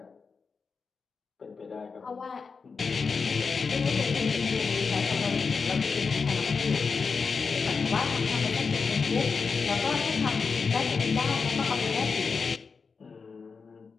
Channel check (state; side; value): quieter; right; 5.1 dB